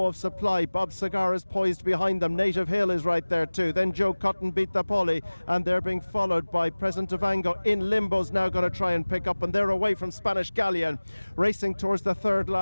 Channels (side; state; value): both; inverted; correlation -1.00